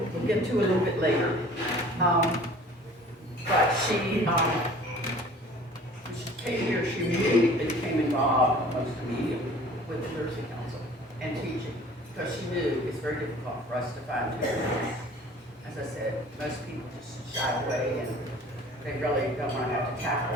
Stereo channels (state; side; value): normal; both; correlation 0.48